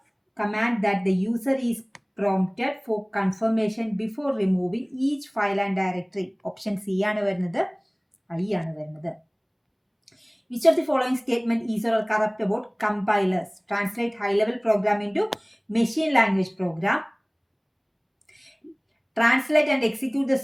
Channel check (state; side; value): identical; both; correlation 1.00